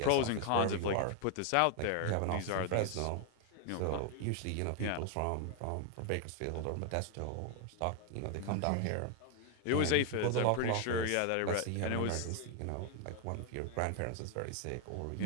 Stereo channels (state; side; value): different; both; correlation 0.00